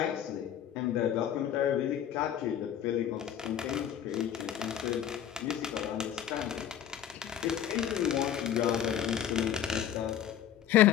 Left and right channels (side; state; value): right; quieter; 10.1 dB